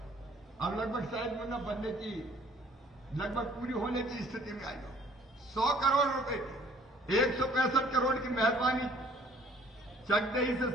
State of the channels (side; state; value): both; normal; correlation 0.57